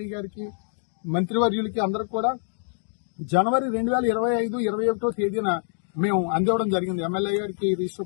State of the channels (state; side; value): silent; right; digital silence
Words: గారికి, మంత్రివర్యులకి అందరికి కూడా జనవరి 2025-21 తేదీన మేము అందివ్వడం జరిగింది. ఎమ్మెల్యే గారికి